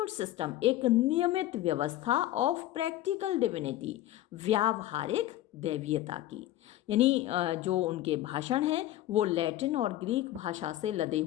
सिस्टम, एक नियमित व्यवस्था, ऑफ प्रैक्टिकल डिविनिटी, व्यावहारिक दैवीयता की। यानी जो उनके भाषण हैं वो लैटिन और ग्रीक भाषा से लदे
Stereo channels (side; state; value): right; quieter; 14.4 dB